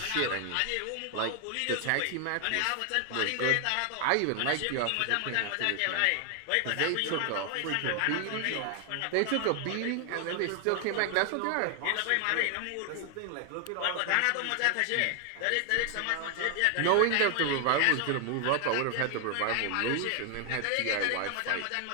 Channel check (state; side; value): different; both; correlation 0.00